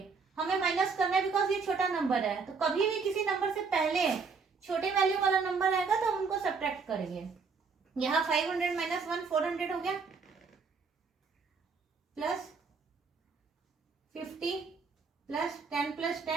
हमें माइनस करना है बिकॉज ये छोटा नंबर है। तो कभी भी किसी नंबर से पहले छोटे वैल्यू वाला नंबर आएगा तो हम उनको सब्ट्रैक्ट करेंगे। यहाँ 500 माइनस 1 400 हो गया, प्लस 50 प्लस 10 प्लस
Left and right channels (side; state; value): left; quieter; 5.1 dB